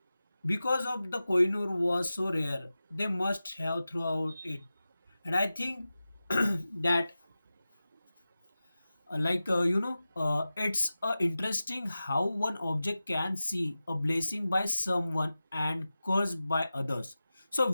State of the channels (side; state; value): both; inverted; correlation -0.95